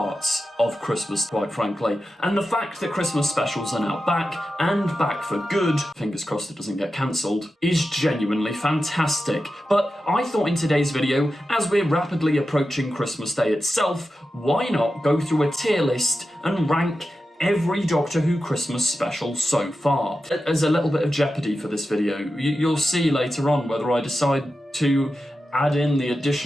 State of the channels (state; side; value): normal; both; correlation 0.91